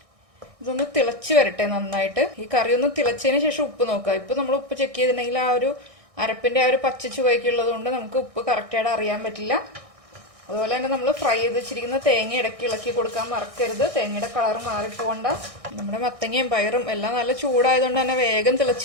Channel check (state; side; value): late; left; 1.6 ms